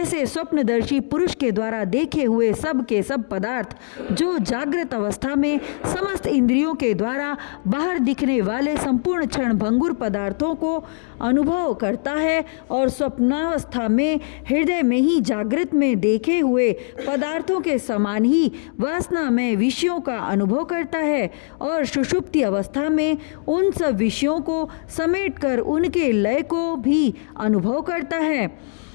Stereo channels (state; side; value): silent; right; 59 dB below the other